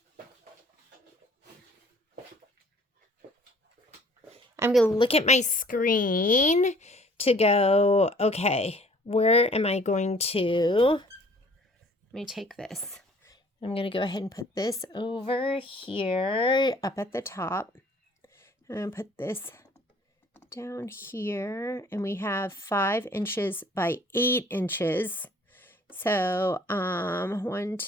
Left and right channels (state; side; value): normal; both; correlation 0.55